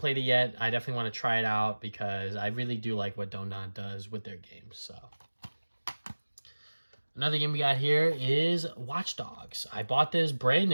it yet. I definitely want to try it out because I really do like what Don't Nod does with their games. So another game we got here is Watch Dogs. I bought this brand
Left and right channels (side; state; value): both; inverted; correlation -1.00